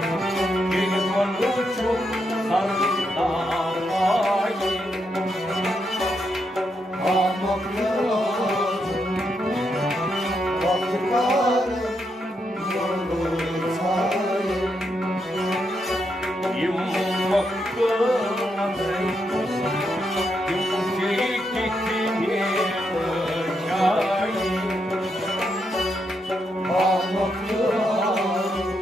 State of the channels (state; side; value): normal; both; correlation 0.81